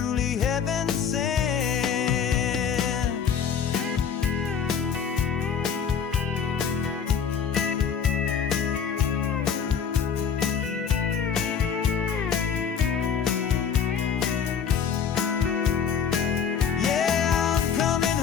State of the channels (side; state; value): right; quieter; 7.2 dB